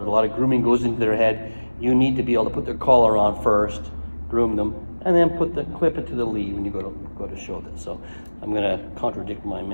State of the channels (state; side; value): inverted; both; correlation -1.00